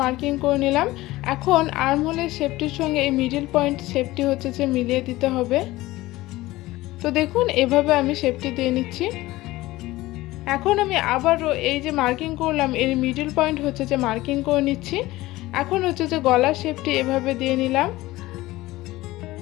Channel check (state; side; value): quieter; right; 18.2 dB